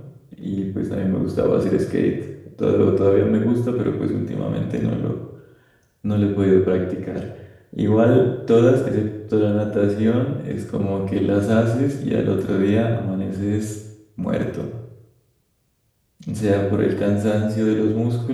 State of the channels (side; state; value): both; identical; correlation 1.00